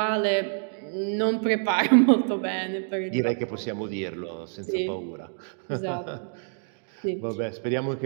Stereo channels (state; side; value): silent; left; digital silence